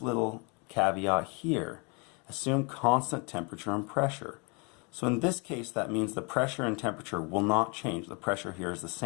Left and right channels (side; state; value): right; quieter; 32.4 dB